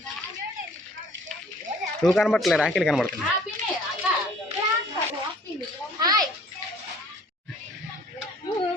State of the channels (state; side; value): normal; both; correlation 0.54